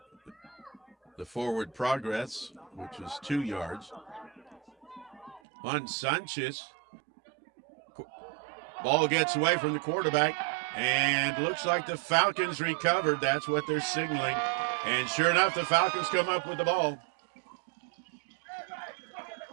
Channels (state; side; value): drops out; left; at 5.4 s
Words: the forward progress, which was 2 yards. Juan Sanchez. Ball gets away from the quarterback, and looks like the Falcons recovered. That's what they're signaling. And sure enough, the Falcons come up with the ball.